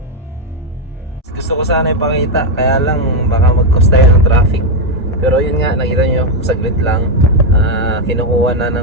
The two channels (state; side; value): normal; both; correlation 0.05